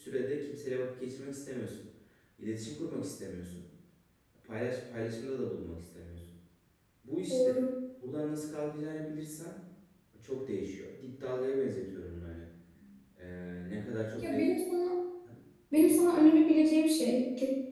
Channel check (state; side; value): identical; both; correlation 1.00